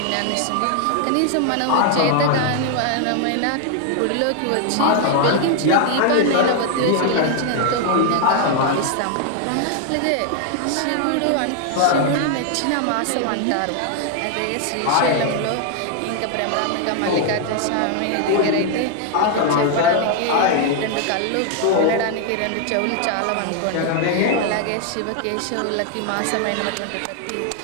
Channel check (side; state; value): both; different; correlation 0.00